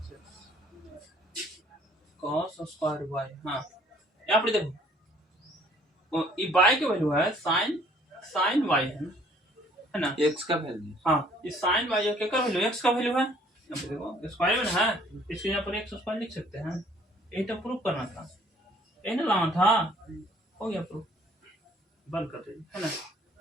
cos स्क्वायर y। हाँ, यहाँ पर देखो ये y के वैल्यू है साइन y है ना? x का वैल्यू। हाँ, ये साइन y क्या का वैल्यू, x का वैल्यू है। यहाँ पे देखो स्क्वायर में है, इसलिए यहाँ पर x स्क्वायर लिख सकते हैं। यही तो प्रूफ करना था, यही ना लाना था। हो गया प्रूफ, बंद कर दीजिए, है ना?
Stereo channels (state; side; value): normal; both; correlation 0.58